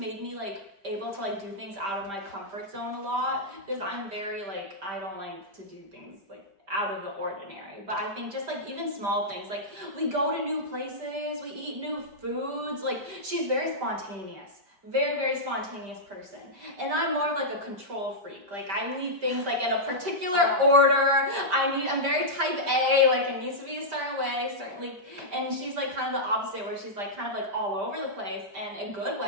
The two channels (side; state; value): left; late; 5.1 ms